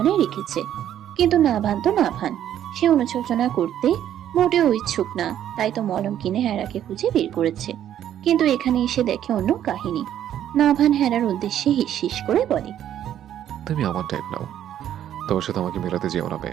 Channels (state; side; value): quieter; left; 10.8 dB